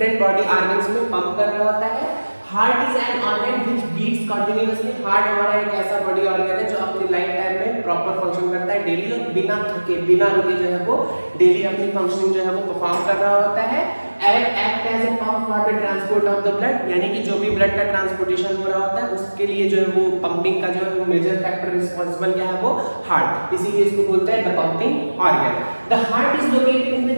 बॉडी ऑर्गन्स में पंप कर रहा होता है। Heart is an organ which beats continuously. Heart हमारा एक ऐसा बॉडी ऑर्गन है जो अपनी लाइफ टाइम में प्रॉपर फंक्शन करता है डेली, और बिना थके बिना रुके जो है वो डेली अपनी फंक्शनिंग जो है वो परफॉर्म कर रहा होता है। Act as a pump for the transport of the blood, यानी कि जो भी ब्लड का ट्रांसपोर्टेशन हो रहा होता है उसके लिए जो है वो पंपिंग का जो है वो मेजर फैक्टर रिस्पांसिबल क्या है वो हार्ट, इसीलिए इसको बोलते हैं the pumping organ. The heart is located in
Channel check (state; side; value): inverted; both; correlation -1.00